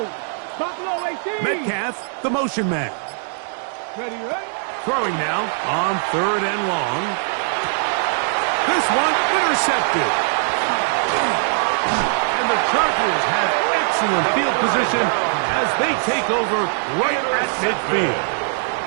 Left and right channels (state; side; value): silent; left; digital silence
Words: Buffalo 18. Metcalf, the motion man. Ready, ready. Throwing now on 3rd and long. This one intercepted. And the Chargers have excellent field position as they take over right at midfield.